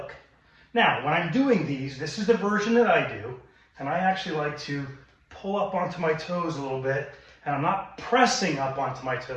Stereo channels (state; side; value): identical; both; correlation 1.00